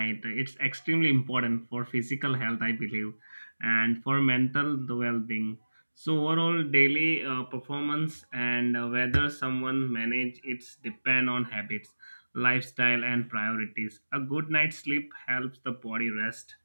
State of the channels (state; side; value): inverted; both; correlation -1.00